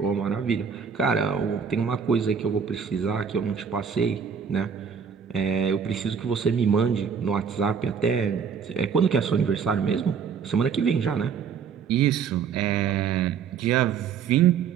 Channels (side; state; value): left; quieter; 6.7 dB